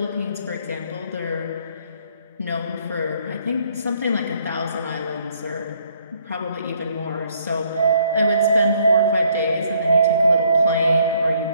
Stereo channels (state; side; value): inverted; both; correlation -0.66